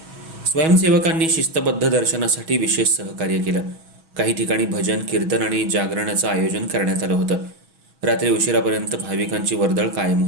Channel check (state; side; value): late; left; 6.2 ms